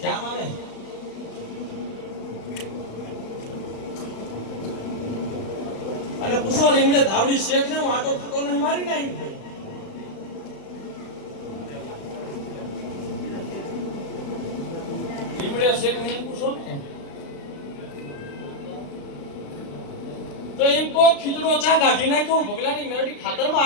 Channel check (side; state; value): right; late; 36 ms